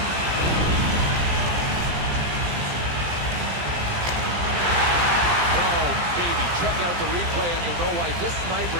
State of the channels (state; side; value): late; left; 17 ms